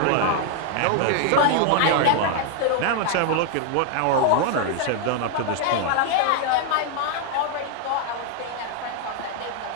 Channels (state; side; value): different; both; correlation 0.00